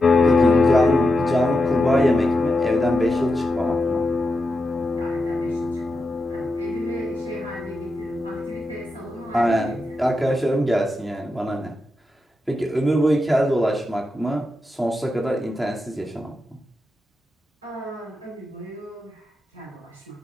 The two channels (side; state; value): both; normal; correlation 0.88